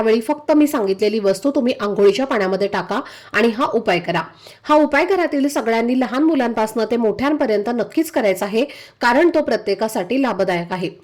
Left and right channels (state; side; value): identical; both; correlation 1.00